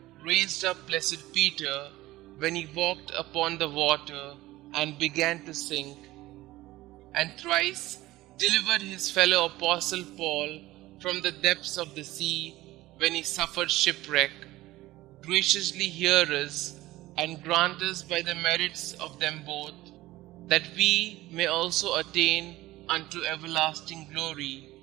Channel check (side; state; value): left; quieter; 17.4 dB